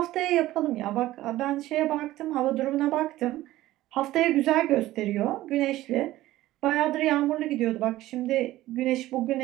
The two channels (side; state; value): left; quieter; 15.9 dB